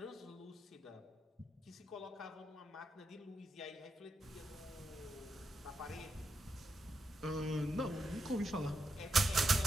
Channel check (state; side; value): normal; both; correlation 0.83